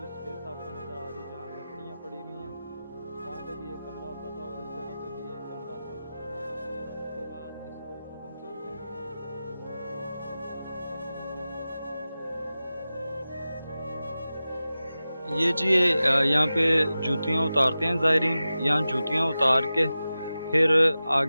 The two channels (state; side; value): inverted; both; correlation -0.94